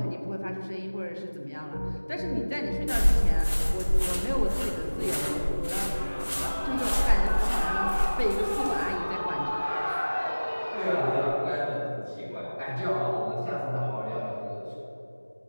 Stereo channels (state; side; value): inverted; both; correlation -1.00